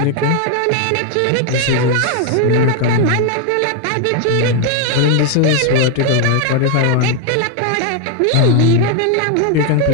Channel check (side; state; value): both; different; correlation 0.01